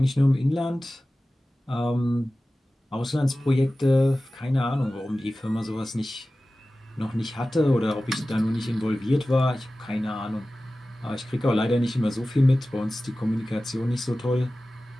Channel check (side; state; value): both; normal; correlation 0.96